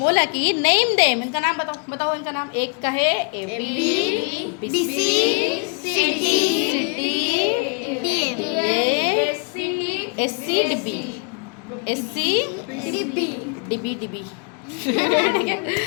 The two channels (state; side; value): quieter; right; 34.4 dB